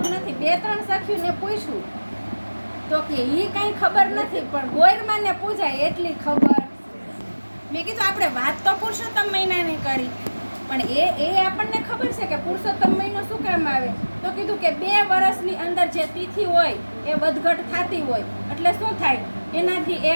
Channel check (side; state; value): both; inverted; correlation -1.00